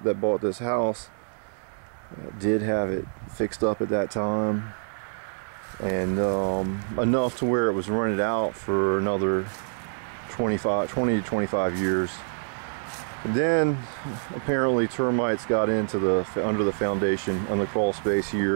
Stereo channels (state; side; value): silent; left; digital silence